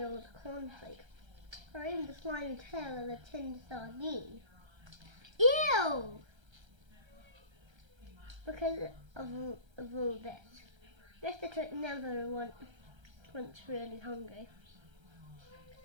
old cornflake. Or even the slimy tail of a tinned sardine. Ew! Because of all this, Mr. Twit never once really hungry.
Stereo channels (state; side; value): late; left; 1.3 ms